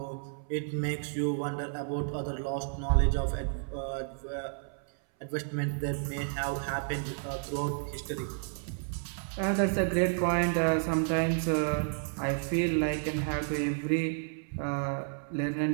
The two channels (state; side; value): silent; left; 57 dB below the other